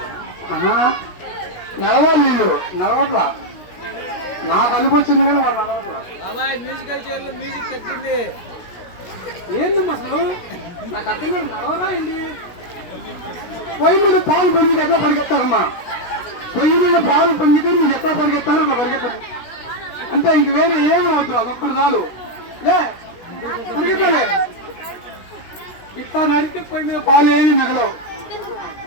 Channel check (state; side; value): late; right; 17 ms